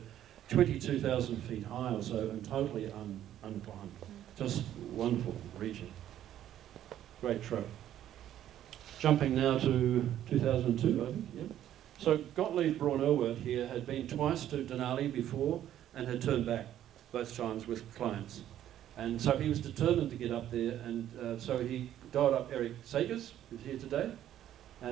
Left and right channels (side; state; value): left; quieter; 11.6 dB